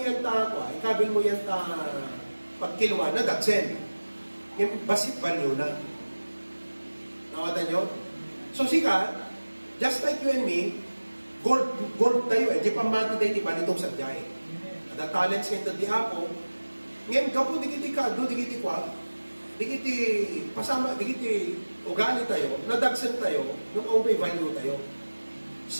ikabil mo yan pagkilwa na dagsen. Yung basit value na. Nakata nyo? So sika, just like you and me, gold tayo eh. Di pamati tayo di ba nitong sadyay. Ada talents ngayon di ako. Ngayon kapo digiti ka, digiti kwa, digiti pasama, digiti ugali tayo, nadagsan tayo, nung may value tayo.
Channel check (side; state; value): both; inverted; correlation -1.00